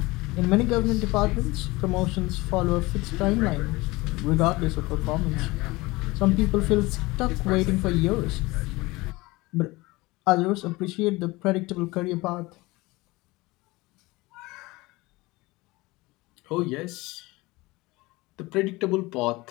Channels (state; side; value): quieter; right; 21.8 dB